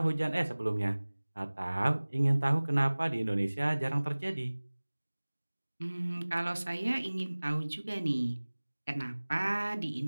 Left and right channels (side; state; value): both; inverted; correlation -1.00